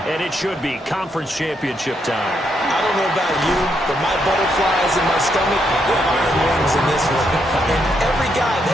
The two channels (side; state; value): both; normal; correlation 0.78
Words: and it should be conference championship time. I don't know about you, but my butterflies in my stomach are iron wings in this one. And every guy I've